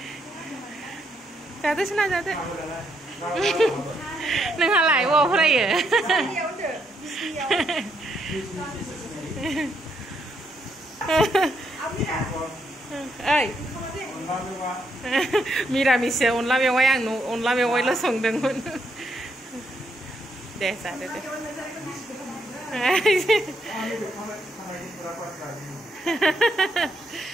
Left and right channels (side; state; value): both; normal; correlation 0.76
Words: जादो सना जादो। नोंहालाय बबाव फरायो? ओइ मिरामिससो अनला मेवाइ आं अनला मेवाइल' संदोंमोन। दे जादो दे।